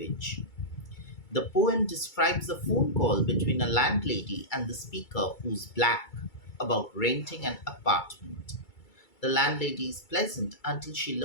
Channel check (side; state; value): right; late; 2.3 ms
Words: The poem describes a phone call between a landlady and the speaker, who's black, about renting an apartment. The landlady is pleasant until she